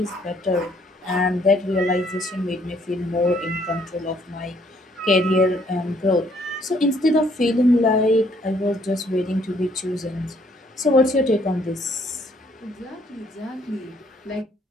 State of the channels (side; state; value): both; normal; correlation 0.65